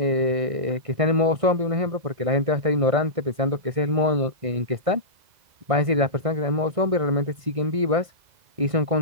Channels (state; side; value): late; left; 1.6 ms